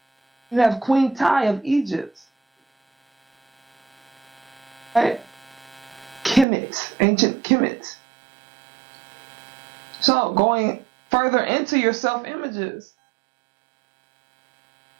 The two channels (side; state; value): left; drops out; at 6.5 s